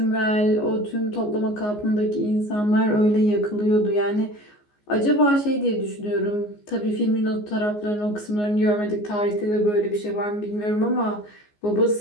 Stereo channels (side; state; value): right; late; 14 ms